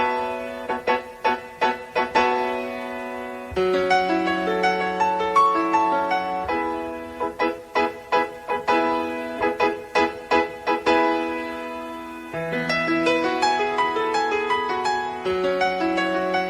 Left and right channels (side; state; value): both; identical; correlation 1.00